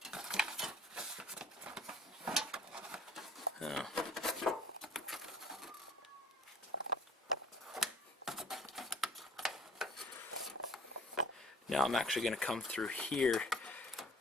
Now I'm actually going to come through here,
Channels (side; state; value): both; normal; correlation 0.51